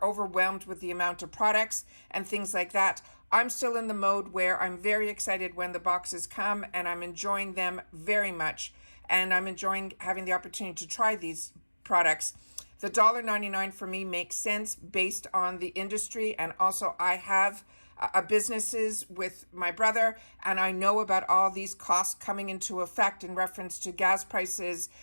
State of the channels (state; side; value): inverted; both; correlation -1.00